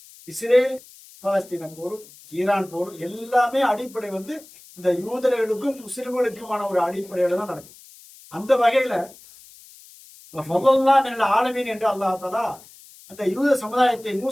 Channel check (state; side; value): noise; left; hiss, 22 dB below the sound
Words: இஸ்ரேல் பாலஸ்தீன போர், ஈரான் போர் எல்லாமே அடிப்படை இந்த யூதர்களுக்கும் முஸ்லிம்களுக்குமான ஒரு அடிப்படையில தான் நடக்குது. அந்த வகையில ஆலமீன் என்று அல்லாஹ் தஆலா அந்த யூத சமுதாயத்தை